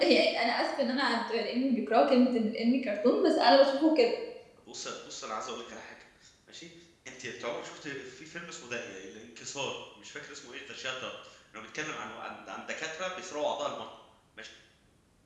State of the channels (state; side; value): identical; both; correlation 1.00